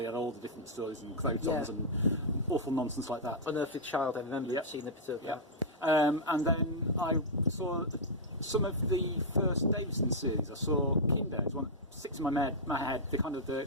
had all the different stories and crotons and awful nonsense like that. Unearthly Child, I remember seeing a bit of that. And then I saw some of the first Davison series. I saw Kinder. It's one that sticks in my head. The kind of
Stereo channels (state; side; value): normal; both; correlation -0.08